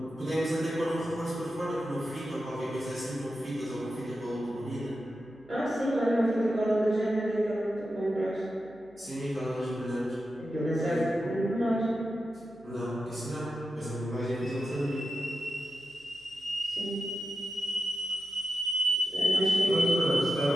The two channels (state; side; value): noise; right; hum, 30 dB below the sound